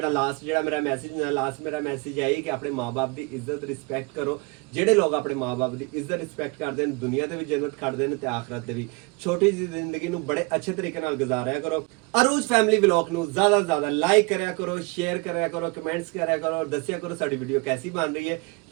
ਮੇਰਾ ਮੈਸੇਜ ਹੈ ਕਿ ਆਪਣੇ ਮਾਂ-ਬਾਪ ਦੀ ਇੱਜ਼ਤ ਰਿਸਪੈਕਟ ਕਰੋ। ਜਿਹੜੇ ਲੋਕ ਆਪਣੇ ਮਾਂ-ਬਾਪ ਦੀ ਇੱਜ਼ਤ ਰਿਸਪੈਕਟ ਕਰਦੇ ਨੇ ਦੁਨੀਆ ਤੇ ਵੀ ਜੰਨਤ ਖੜਦੇ ਨੇ ਤੇ ਆਖਰਤ ਤੇ ਵੀ। ਛੋਟੀ ਜਿਹੀ ਜ਼ਿੰਦਗੀ ਨੂੰ ਬੜੇ ਅੱਛੇ ਤਰੀਕੇ ਨਾਲ ਗੁਜ਼ਾਰਿਆ ਕਰੋ। ਅਰੂਜ ਫੈਮਿਲੀ ਵਲੌਗ ਨੂੰ ਜ਼ਿਆਦਾ ਤੋਂ ਜ਼ਿਆਦਾ ਲਾਈਕ ਕਰਿਆ ਕਰੋ, ਸ਼ੇਅਰ ਕਰਿਆ ਕਰੋ, ਕਮੈਂਟਸ ਕਰਿਆ ਕਰੋ, ਔਰ ਦੱਸਿਆ ਕਰੋ ਸਾਡੀ ਵੀਡੀਓ ਕੈਸੀ ਬਣ ਰਹੀ ਹੈ।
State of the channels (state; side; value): quieter; left; 28.3 dB